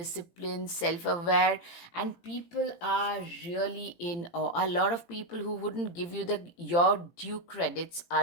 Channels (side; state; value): right; late; 18 ms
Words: self aware, and people are really in awe. A lot of people who wouldn't give you your due credits